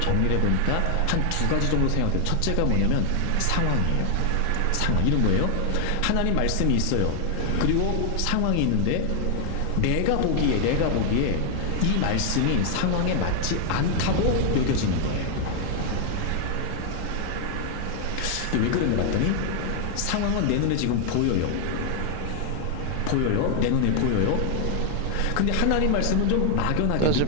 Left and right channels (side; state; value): both; different; correlation 0.00